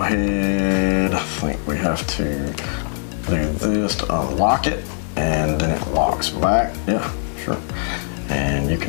head, I think we have to do this to unlock it, and then it locks back. Yeah, sure. And you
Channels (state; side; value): silent; right; 58 dB below the other